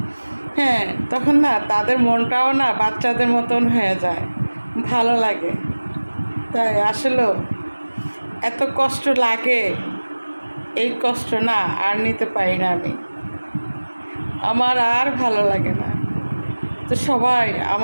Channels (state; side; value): inverted; both; correlation -1.00